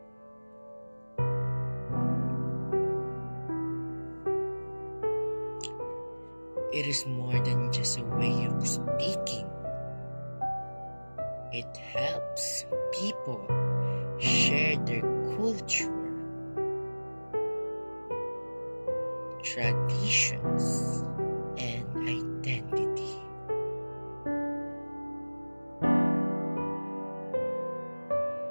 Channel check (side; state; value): both; inverted; correlation -1.00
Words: It is more than just a way of speaking. It helps people share their culture, traditions, and identity.